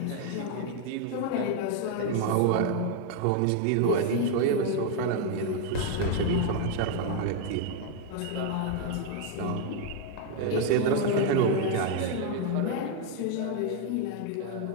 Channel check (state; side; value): different; both; correlation 0.00